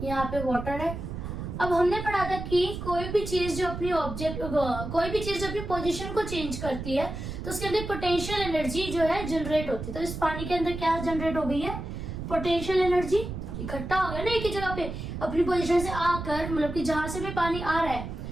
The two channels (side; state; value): right; noise; rumble, 7 dB below the sound